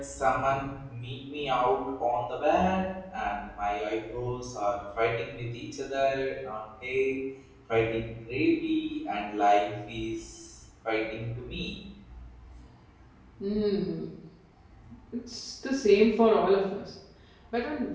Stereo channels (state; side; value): identical; both; correlation 1.00